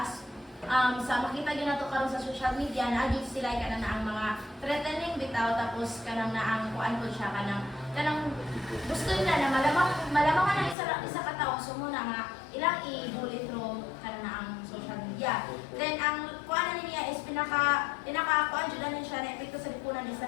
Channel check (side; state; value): right; drops out; at 10.8 s